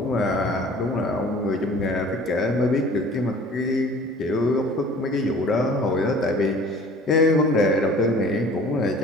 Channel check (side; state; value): both; normal; correlation 0.47